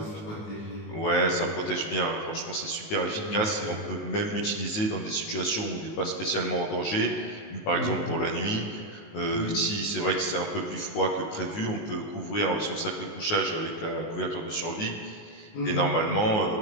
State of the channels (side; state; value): right; late; 19 ms